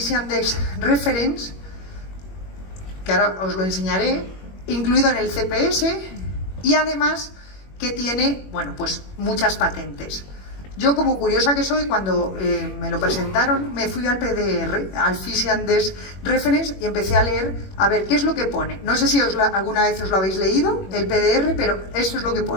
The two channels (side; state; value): right; late; 21 ms